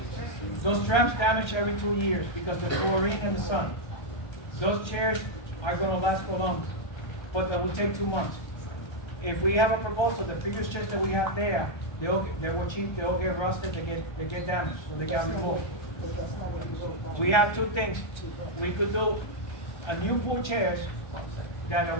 Those straps damage every 2 years because the chlorine and the sun. Those chairs are gonna last for long, but that will take 2 months. If we have a proposal, the previous chairs that we have there, they were cheap, they all get rusted, they get damaged, so they got removed. We have two things. We could do a new pool chairs that in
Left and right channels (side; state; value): right; late; 1.3 ms